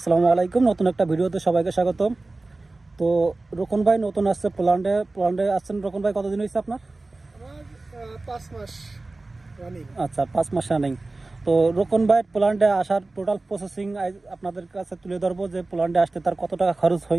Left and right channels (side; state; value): left; quieter; 3.2 dB